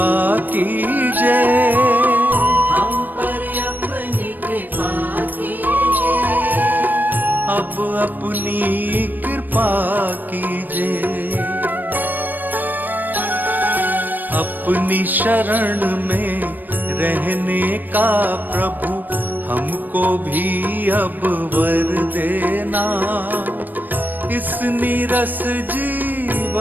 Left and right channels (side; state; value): left; late; 0.089 ms